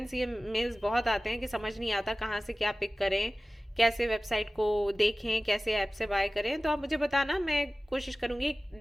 ये मेल्स बहुत आते हैं कि समझ नहीं आता कहाँ से क्या पिक करें, कैसे वेबसाइट को देखें, कैसे ऐप से बाय करें, तो आप मुझे बताना, मैं कोशिश करूँगी, एक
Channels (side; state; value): both; normal; correlation 0.97